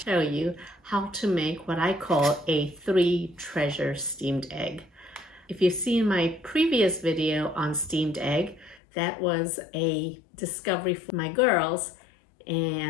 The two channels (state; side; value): drops out; right; at 8.8 s